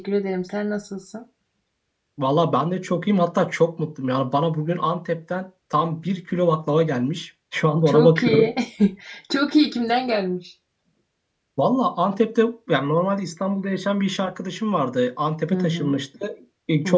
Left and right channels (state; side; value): identical; both; correlation 1.00